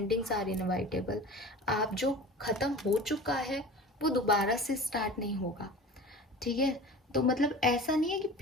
आर इनवाइटेबल। आप जो ख़त्म हो चुका है वो दोबारा से स्टार्ट नहीं होगा, ठीक है। तो मतलब ऐसा नहीं है कि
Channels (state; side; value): normal; both; correlation 0.38